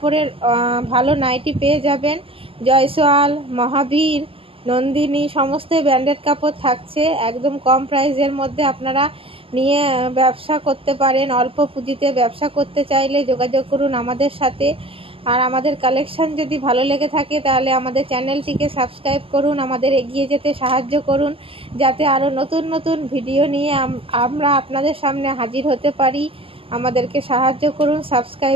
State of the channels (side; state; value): left; late; 0.27 ms